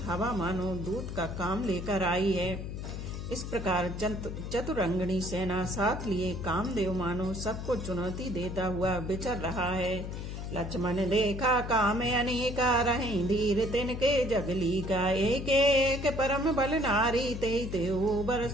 हवा मानो दूत का काम लेकर आई है। इस प्रकार चतुरंगिनी सेना साथ लिए कामदेव मानो सबको चुनौती देता हुआ विचर रहा है। लक्ष्मण देखा काम अनेका, रहें धीर तिनके जगली का। एक एक परम बल नारी, ते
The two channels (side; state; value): left; noise; hum, 6 dB below the sound